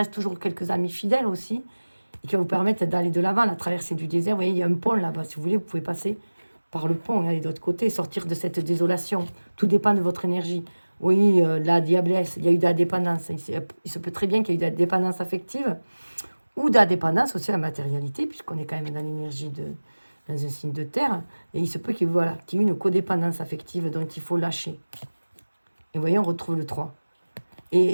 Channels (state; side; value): inverted; both; correlation -1.00